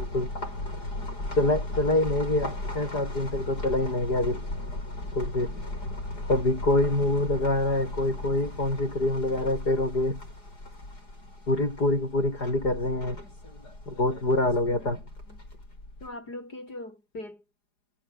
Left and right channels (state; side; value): late; right; 4.9 ms